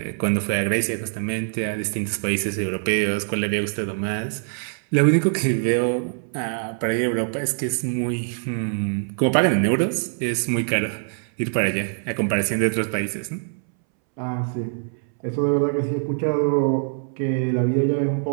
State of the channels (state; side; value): silent; left; 63 dB below the other